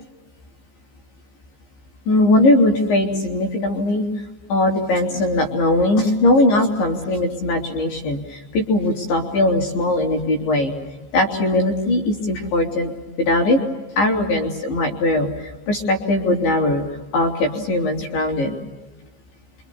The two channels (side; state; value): right; late; 15 ms